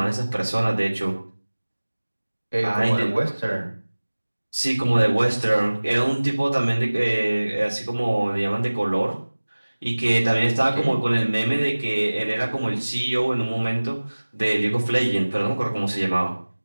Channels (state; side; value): inverted; both; correlation -1.00